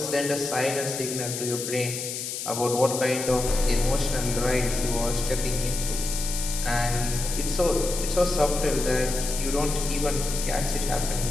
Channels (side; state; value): left; noise; hiss, 5 dB below the sound